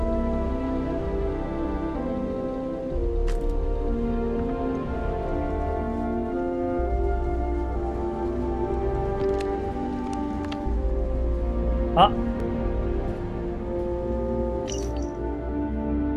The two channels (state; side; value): identical; both; correlation 1.00